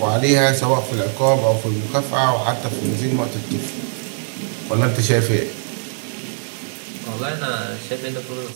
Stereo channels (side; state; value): left; silent; digital silence